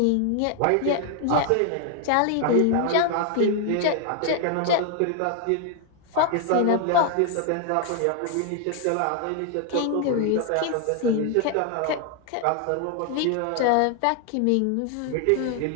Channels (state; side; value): different; both; correlation 0.00